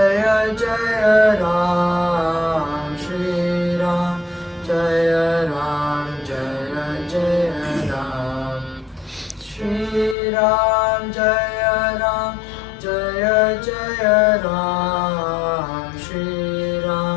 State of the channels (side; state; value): right; drops out; at 10.2 s